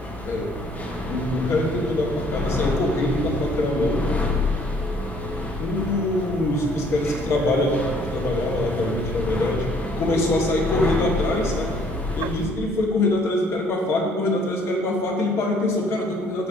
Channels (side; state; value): both; normal; correlation 0.61